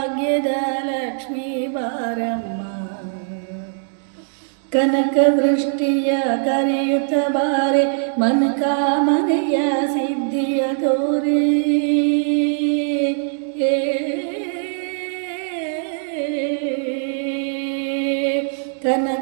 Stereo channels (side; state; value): left; silent; digital silence